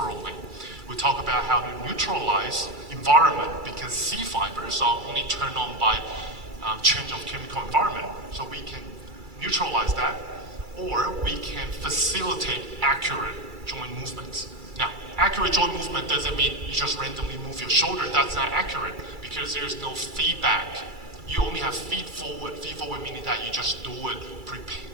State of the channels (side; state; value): left; late; 2.3 ms